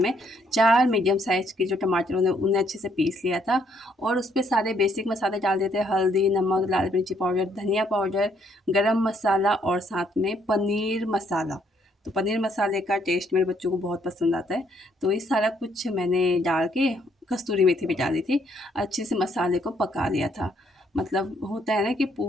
4 मीडियम साइज़ के जो टमाटर उन्हें अच्छे से पीस लिया था। और उस पर सारे बेसिक मसाले डाल देते हैं, हल्दी, नमक, लाल मिर्ची पाउडर, धनिया पाउडर, गरम मसाला और साथ में पनीर मसाला। तो पनीर मसाले का टेस्ट मेरे बच्चों को बहुत पसंद आता है। तो ये सारा कुछ मैंने डाल के कस्तूरी मेथी भी डाली थी, अच्छे से मसाले को पका लिया था। मतलब होता है ना कि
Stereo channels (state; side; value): normal; both; correlation 0.69